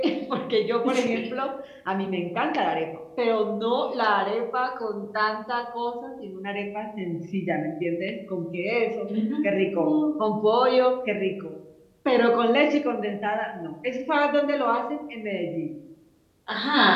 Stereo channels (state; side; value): identical; both; correlation 1.00